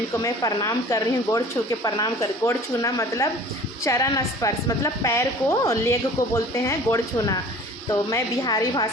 को मैं प्रणाम कर रही हूँ। गोड़ छू के प्रणाम कर, गोड़ छूना मतलब चरण स्पर्श, मतलब पैर को, लेग को बोलते हैं गोड़ छूना। तो मैं बिहारी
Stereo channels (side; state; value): both; normal; correlation 0.45